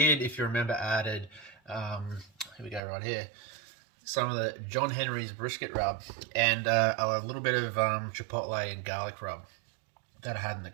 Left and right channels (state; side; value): drops out; left; at 2.8 s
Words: if you remember, added, here we go right here, some of the John Henry's brisket rub and a little bit of chipotle and garlic rub that I had in the